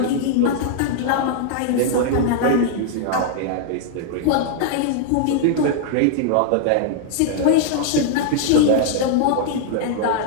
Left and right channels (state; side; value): different; both; correlation -0.01